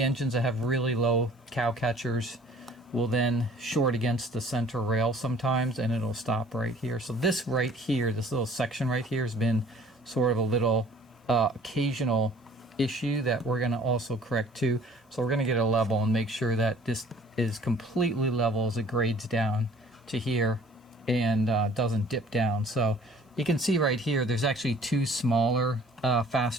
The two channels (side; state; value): both; normal; correlation 0.53